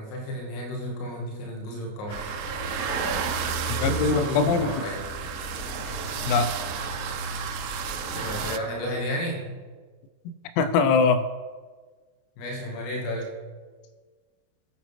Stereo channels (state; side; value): late; right; 28 ms